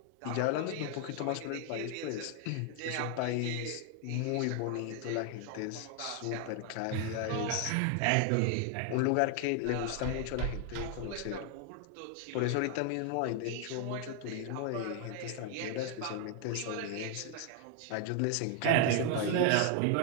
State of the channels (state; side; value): different; both; correlation 0.01